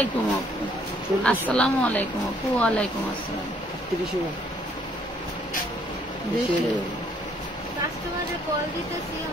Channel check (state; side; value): normal; both; correlation 0.65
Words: আপু। আসসালামু আলাইকুম আপু। ওয়ালাইকুম আসসালাম। 38 হবে।